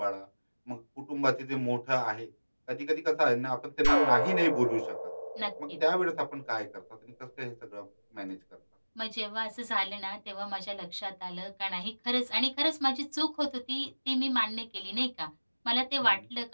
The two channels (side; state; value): both; inverted; correlation -1.00